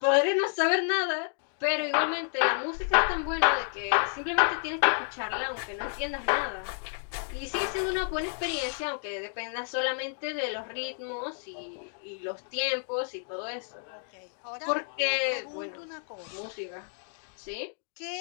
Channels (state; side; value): silent; right; 58 dB below the other